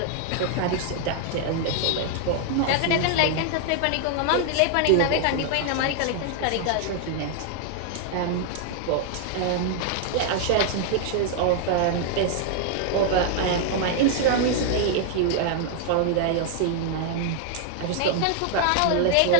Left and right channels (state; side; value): different; both; correlation 0.00